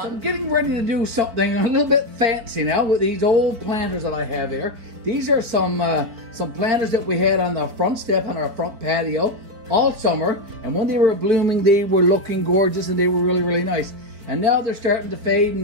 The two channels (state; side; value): late; left; 4.4 ms